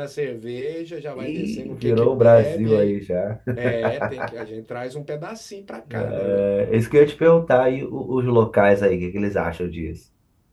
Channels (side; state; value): both; identical; correlation 1.00